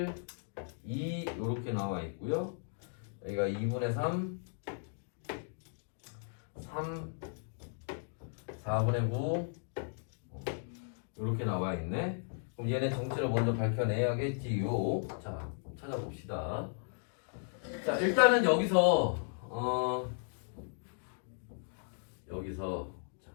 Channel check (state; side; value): silent; right; digital silence